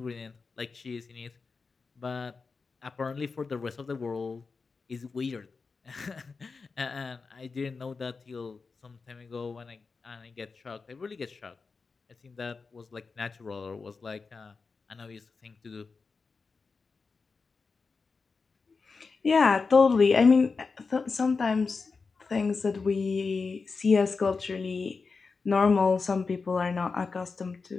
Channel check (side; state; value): right; quieter; 4.6 dB